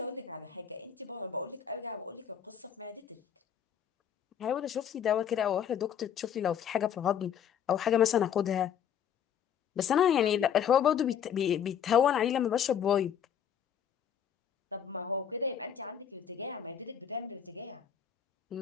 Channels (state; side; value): quieter; right; 8.6 dB